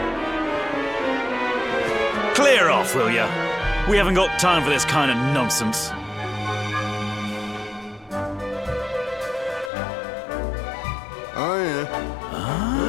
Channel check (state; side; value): drops out; right; at 9.7 s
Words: Clear off, will ya? We haven't got time for this kind of nonsense. Oh, yeah.